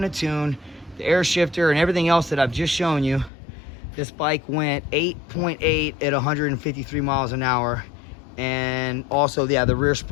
a tune, the air shifter and everything else that I've just shown you, this bike went 8.8 at 153 miles an hour. And also, yeah, the rear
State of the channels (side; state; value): right; drops out; at 3.3 s